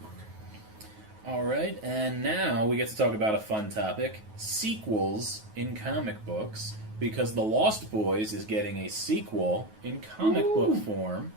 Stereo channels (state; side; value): late; left; 9.3 ms